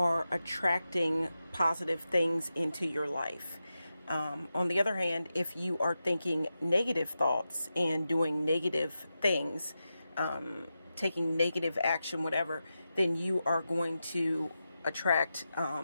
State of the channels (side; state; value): both; inverted; correlation -0.90